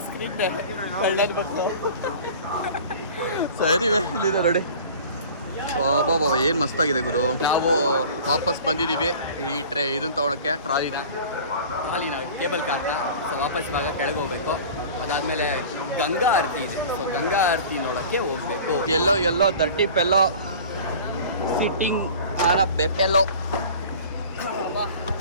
ಸ್ಕ್ರೀನ್ನೇ, ಕಳ್ಳನ ಮಕ್ಕಳು. ಸರಿವೇ ಇಲ್ಲಿದೆ ನೋಡಿ. ಬಾಬಾ ಏನು ಮಸ್ತಾಗಿದೆ ಗುರು. ನಾವು ವಾಪಸ್ ಬಂದಿದ್ದೀವಿ ಈ ಇದನ್ನು ತೊಗೊಳಕ್ಕೆ, ಟ್ರಾಲಿನ ಕೇಬಲ್ ಕಾರ್ನ. ಸೊ ವಾಪಸ್ ಇವಾಗ ಕೆಳಗೆ ಹೋಗ್ಬೇಕು. ಅದಾದಮೇಲೆ ಗಂಗಾ ಆರತಿ ಇದೆ. ಸೊ ಗಂಗಾ ಆರತಿ ನೋಡೋಕ್ಕೆ ಹೋಗಬೇಕು. ಎಲ್ಲೋ ದರ್ಟಿ ಪೆಲ್ಲೋ ಸಿಟ್ಟಿಂಗ್ ಆನ ಬೆಪೆಲ್ಲೋ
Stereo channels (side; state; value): both; inverted; correlation -0.41